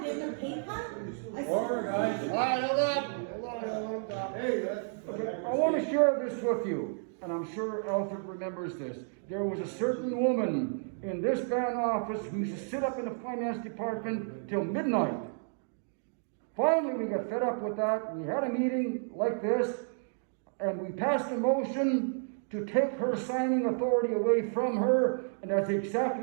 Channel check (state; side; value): silent; left; digital silence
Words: getting a pay cut? Order, guys. All right, hold on. Okay, I want to share this with you, and I'm sure Alfred remembers this. There was a certain woman in this band office who used to sit up in the finance department till midnight. Finally, we got fed up with that. We had a meeting like this, and we passed a motion to take her signing authority away from her, and that's